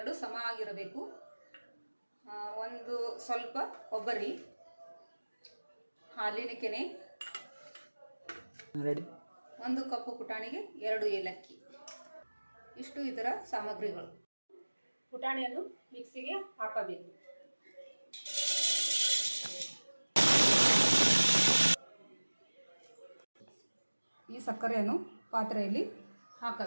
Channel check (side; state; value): both; inverted; correlation -1.00